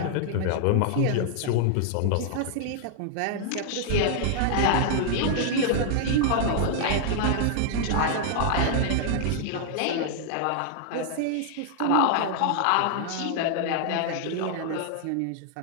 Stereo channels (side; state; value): both; different; correlation -0.01